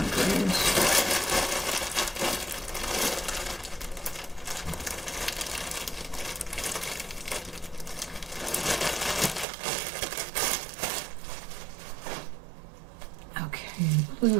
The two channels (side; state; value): left; drops out; at 9.5 s